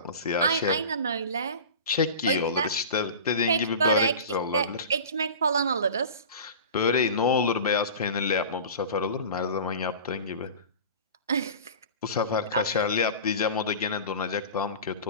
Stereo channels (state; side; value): inverted; both; correlation -0.35